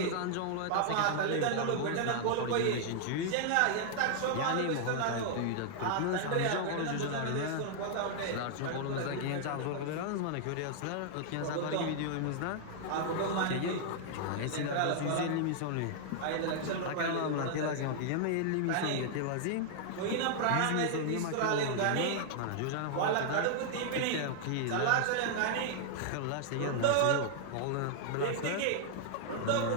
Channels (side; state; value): both; different; correlation -0.01